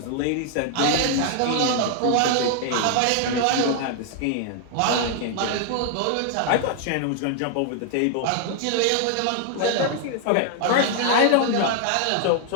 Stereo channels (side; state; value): both; different; correlation 0.00